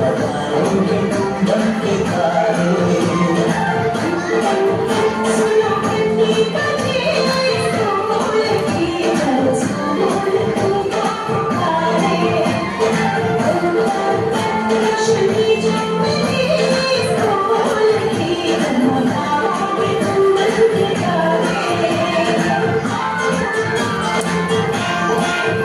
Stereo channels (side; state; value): both; identical; correlation 1.00